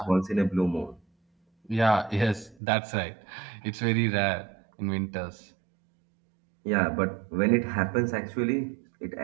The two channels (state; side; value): drops out; left; at 2.6 s